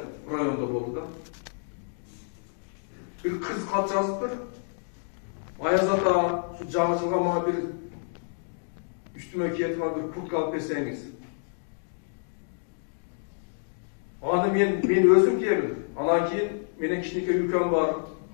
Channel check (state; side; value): silent; right; digital silence